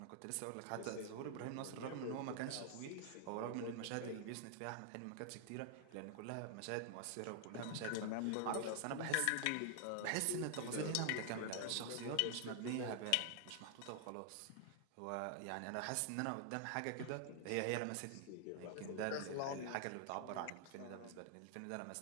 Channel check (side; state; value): both; different; correlation 0.00